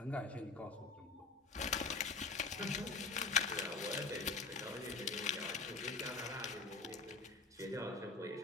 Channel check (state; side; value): quieter; right; 4.0 dB